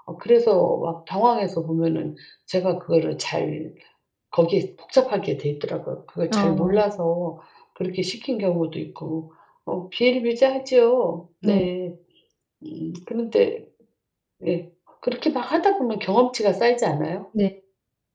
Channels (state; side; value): identical; both; correlation 1.00